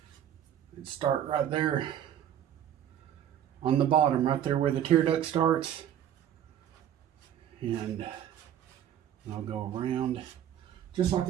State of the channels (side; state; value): left; quieter; 10.4 dB